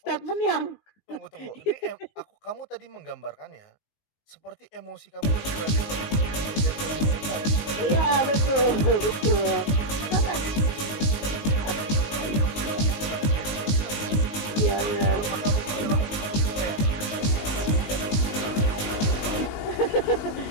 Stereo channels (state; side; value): late; right; 19 ms